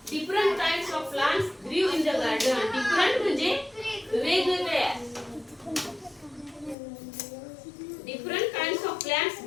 different kinds of plants ग्रीव इन द गार्डन. डिफरंट म्हणजे वेगवेगळ्या. डिफरंट काइंड्स ऑफ प्लांट्स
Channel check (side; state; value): right; drops out; at 6.8 s